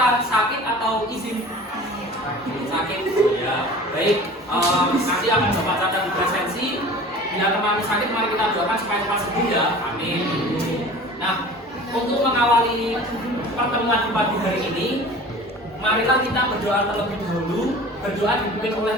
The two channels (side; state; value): both; normal; correlation 0.41